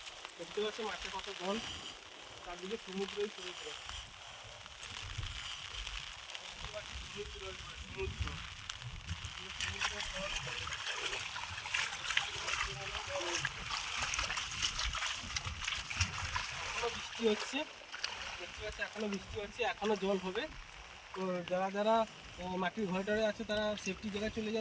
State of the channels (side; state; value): both; identical; correlation 1.00